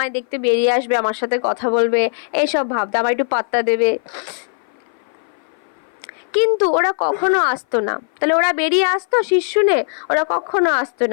দেখতে বেরিয়ে আসবে, আমার সাথে কথা বলবে, এইসব ভাবতো, আমার একটু পাত্তা দেবে। কিন্তু ওরা কখনো আসতো না। তাহলে ওরা বেরিয়ে আসতো শীষ শুনে, ওরা কখনো আসতো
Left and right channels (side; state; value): right; silent; 57 dB below the other